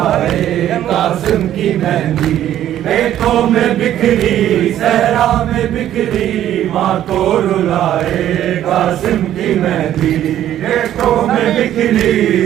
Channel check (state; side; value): quieter; left; 11.8 dB